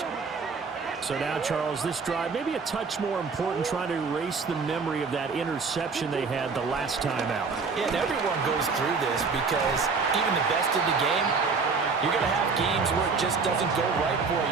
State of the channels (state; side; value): quieter; left; 4.8 dB